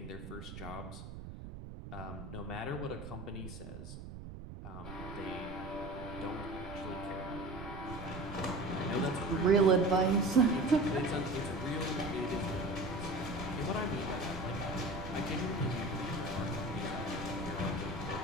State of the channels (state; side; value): noise; right; rumble, 11 dB below the sound